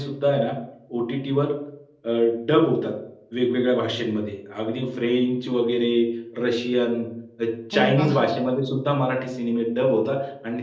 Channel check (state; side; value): identical; both; correlation 1.00